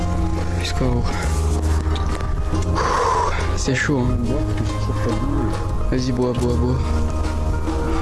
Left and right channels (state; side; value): identical; both; correlation 1.00